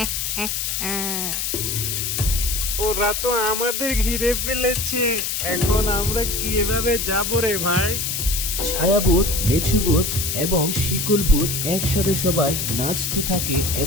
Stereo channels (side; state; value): left; noise; hiss, 1 dB below the sound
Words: ওরা তো আমাদের ঘিরে ফেলেছে, এখন আমরা কিভাবে যাবো রে ভাই? ছায়াভূত, মেছুভূত এবং শিকলভূত একসাথে সবাই নাচতে থাকে